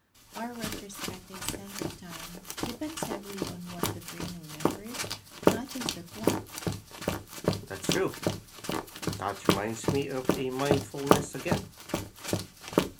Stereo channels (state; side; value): identical; both; correlation 1.00